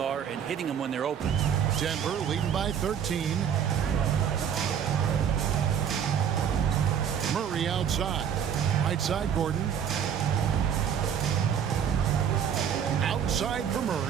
and hitting them when they're open. Denver leading by 13. Murray outside. Right side, Gordon. Outside for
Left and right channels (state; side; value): quieter; left; 8.3 dB